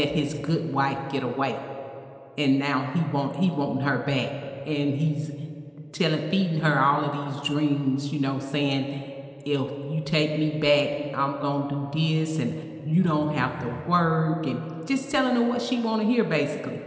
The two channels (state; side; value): identical; both; correlation 1.00